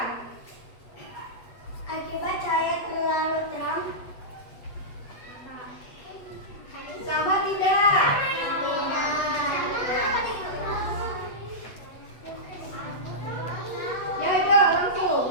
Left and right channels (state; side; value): late; right; 8.2 ms